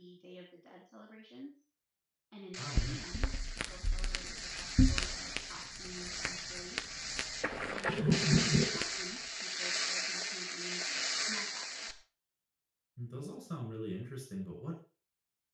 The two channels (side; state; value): both; identical; correlation 1.00